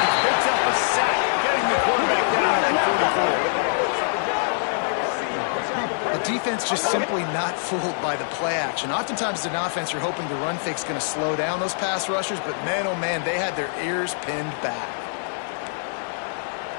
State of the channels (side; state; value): right; silent; digital silence